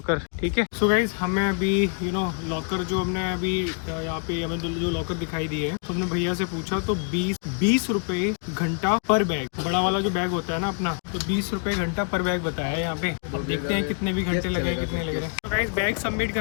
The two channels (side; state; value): right; quieter; 38.6 dB